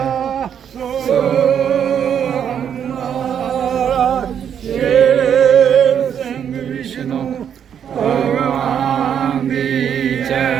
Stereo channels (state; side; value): quieter; left; 8.5 dB